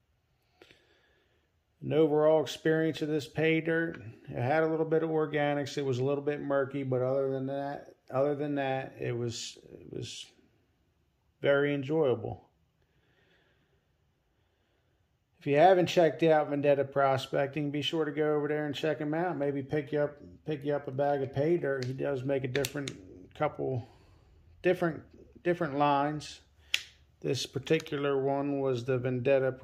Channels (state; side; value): identical; both; correlation 1.00